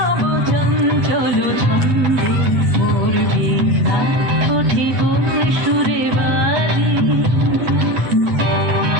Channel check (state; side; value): late; left; 7.9 ms